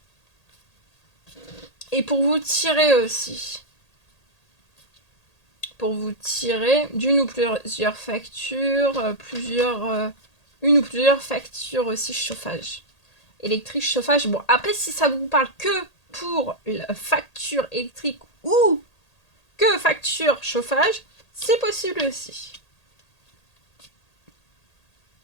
Et pour vous tirer aussi. Pour vous tirer d'une ou plusieurs factures, une ou plusieurs factures aussi chauffage. Électrique, chauffage. Bon, après, si ça vous parle que pour la facture électrique ou que facture chauffage, c'est possible aussi.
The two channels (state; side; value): late; right; 1.8 ms